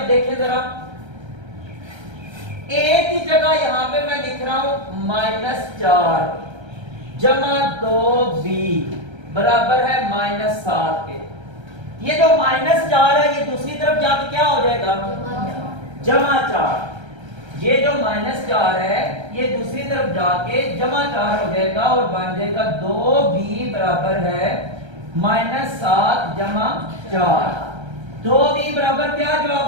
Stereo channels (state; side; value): late; left; 1.3 ms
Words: देखिए जरा, a की जगह यहां पे मैं लिख रहा हूं -4 जमा 2b बराबर है -7 के। ये जो -4 है ये दूसरी तरफ जाके क्या हो जाएगा, +4। ये जो -4 है ये दूसरी तरफ जाके +4 हो जाएगा और बन जाएगा 2b बराबर है -7 + 4। 2b बराबर क्या